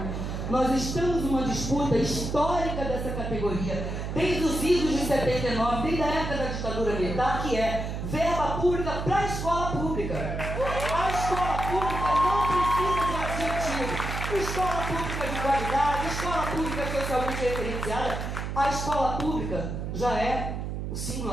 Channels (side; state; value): right; noise; hum, 4 dB below the sound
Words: Nós estamos numa disputa histórica dessa categoria, desde os idos de 79, desde a época da ditadura militar, que é verba pública para a escola pública. A escola pública não precisa de adjetivo. Escola pública de qualidade, escola pública socialmente referenciada. A escola pública já é o